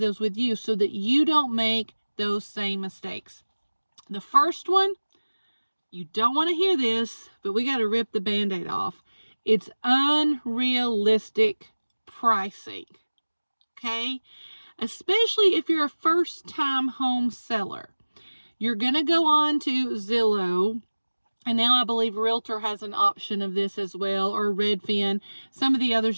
with you so that you don't make those same mistakes. The first one, you don't want to hear this, but we got to rip the Band-Aid off. It's unrealistic pricing, okay? Especially if you're a first-time home seller. You're going to go on to Zillow, and now I believe Realtor has an option of this as well, or Redfin. Some of the others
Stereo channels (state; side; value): inverted; both; correlation -1.00